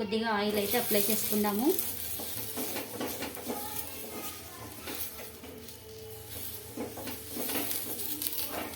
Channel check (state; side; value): identical; both; correlation 1.00